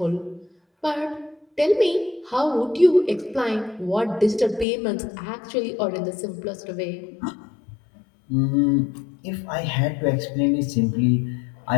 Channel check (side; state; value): right; drops out; at 4.7 s